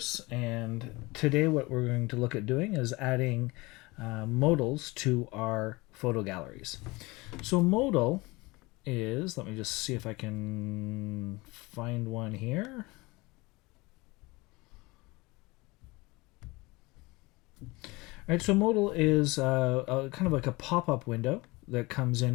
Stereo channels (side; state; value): right; quieter; 23.3 dB